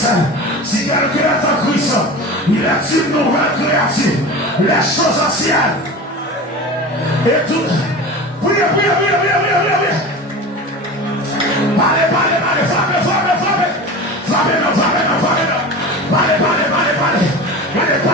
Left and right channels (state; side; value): normal; both; correlation 0.32